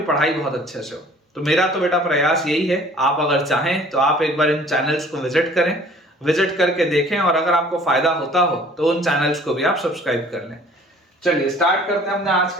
पढ़ाई बहुत अच्छे से हो। तो मेरा तो बेटा प्रयास यही है। आप अगर चाहें तो आप एक बार इन चैनल्स को विजिट करें, विजिट करके देखें, और अगर आपको फायदा होता हो तो उन चैनल्स को भी आप सब्सक्राइब कर लें। चलिए स्टार्ट करते हैं हमने आज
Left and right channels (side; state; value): both; normal; correlation 0.52